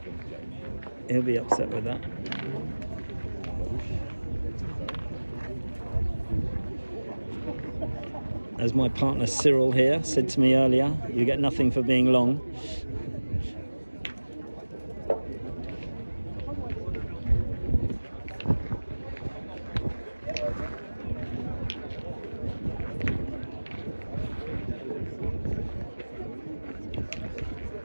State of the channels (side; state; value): both; inverted; correlation -1.00